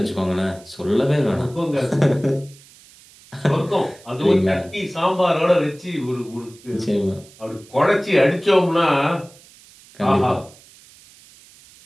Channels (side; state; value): right; noise; hiss, 25 dB below the sound